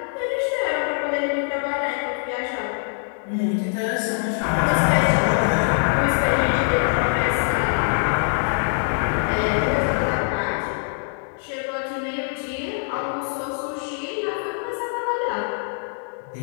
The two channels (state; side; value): silent; right; digital silence